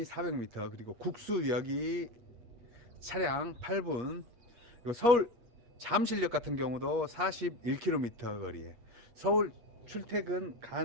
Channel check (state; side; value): late; left; 8.4 ms